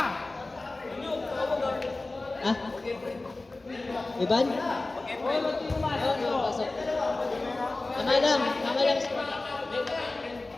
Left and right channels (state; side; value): quieter; right; 3.1 dB